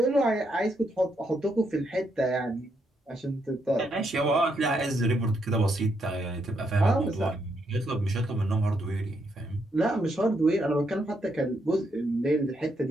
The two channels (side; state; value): both; normal; correlation 0.77